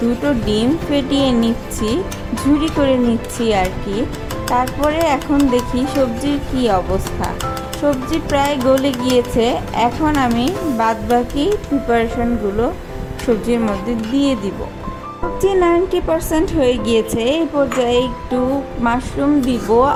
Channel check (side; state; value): both; identical; correlation 1.00